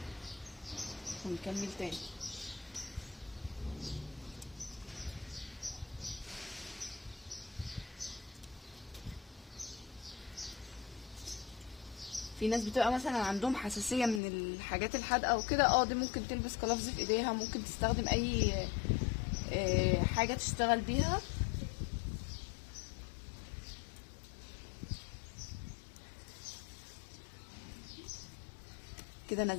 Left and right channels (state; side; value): drops out; right; at 14.2 s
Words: ونكمل تاني. في ناس بتبقى مثلا عندهم حساسيه من الحاجات الحادقه وكده، دي ممكن تلبس قلافز في ايديها، ممكن تستخدم اي حاجه تشتغل بيها. كده